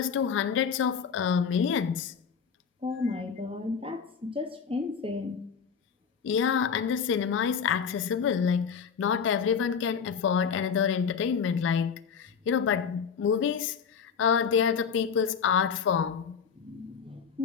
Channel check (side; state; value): right; quieter; 6.6 dB